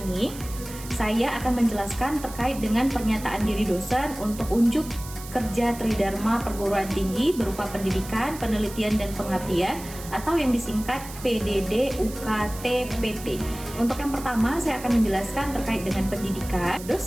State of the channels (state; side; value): noise; right; hiss, 14 dB below the sound